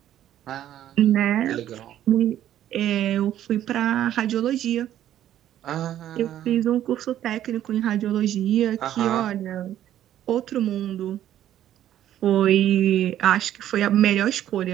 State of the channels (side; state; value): left; quieter; 11.7 dB